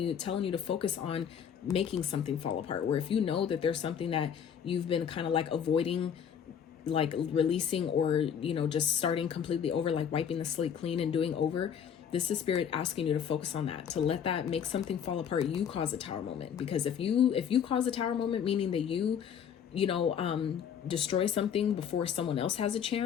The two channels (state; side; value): quieter; right; 8.1 dB